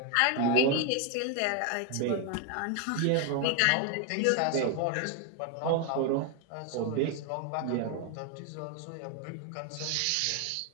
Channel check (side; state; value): both; different; correlation 0.01